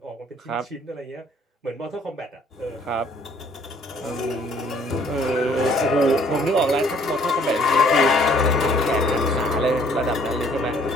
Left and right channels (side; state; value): both; normal; correlation 0.61